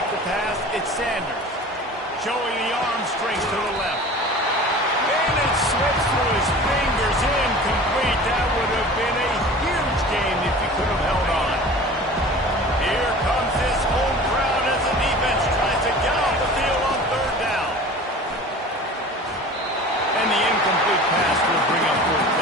to pass, it's Sanders. Showing the arm strength to the left. And it slips through his fingers, incomplete. That would have been a huge game if he could have held on. Here comes this home crowd as the defense tries to get off the field on 3rd down. And the incomplete pass will bring up 4th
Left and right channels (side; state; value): both; normal; correlation 0.40